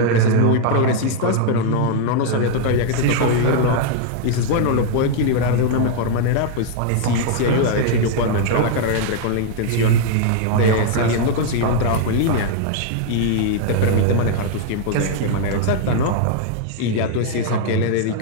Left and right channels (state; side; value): different; both; correlation 0.00